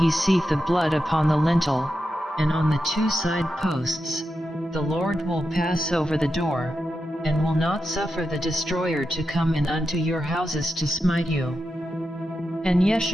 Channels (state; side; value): normal; both; correlation 0.88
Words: seeth the blood upon the lintel, and on the two side posts, the Lord will pass over the door, and will not suffer the destroyer to come in unto your houses to smite you. And ye